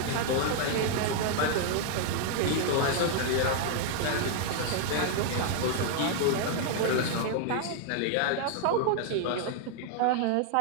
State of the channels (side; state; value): both; different; correlation 0.00